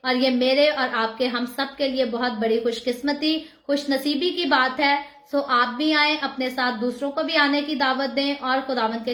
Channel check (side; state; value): both; identical; correlation 1.00